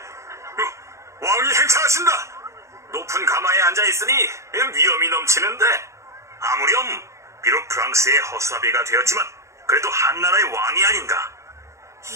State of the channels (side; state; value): left; late; 0.14 ms